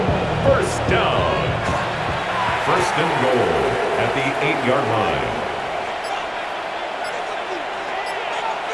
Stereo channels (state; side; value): identical; both; correlation 1.00